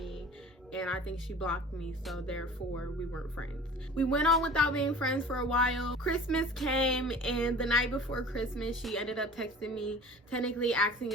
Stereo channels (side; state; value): both; normal; correlation 0.43